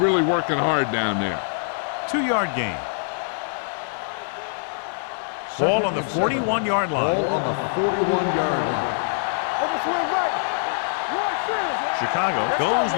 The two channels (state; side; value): silent; right; digital silence